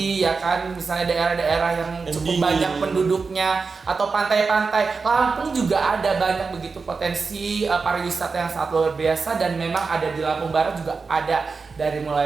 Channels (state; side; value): quieter; left; 4.6 dB